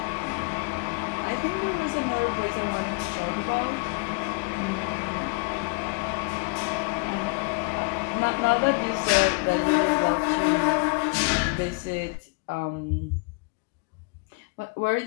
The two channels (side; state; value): right; quieter; 31.9 dB